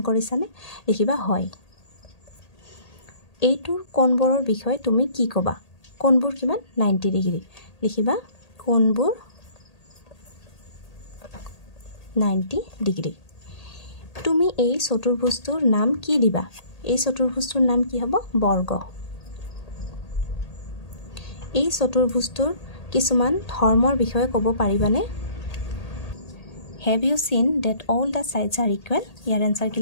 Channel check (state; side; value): late; right; 1.8 ms